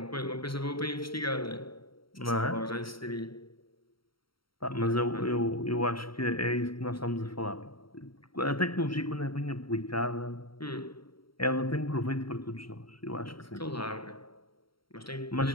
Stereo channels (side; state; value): right; late; 0.74 ms